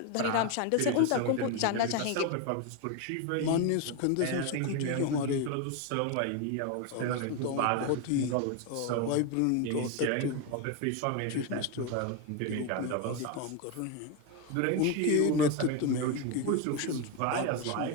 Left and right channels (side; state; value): both; different; correlation 0.02